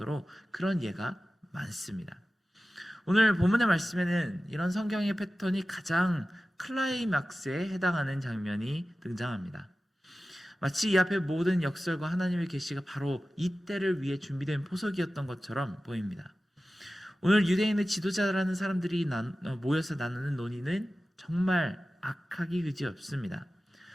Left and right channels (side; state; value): both; normal; correlation 0.95